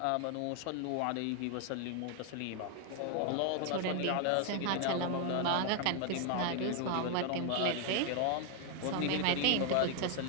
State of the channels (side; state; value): both; different; correlation 0.01